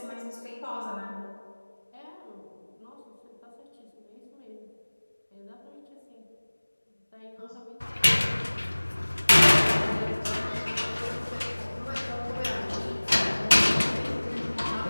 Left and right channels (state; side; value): inverted; both; correlation -1.00